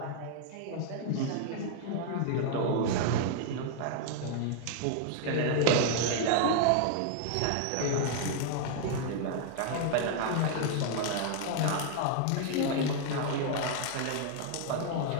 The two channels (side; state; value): both; different; correlation 0.00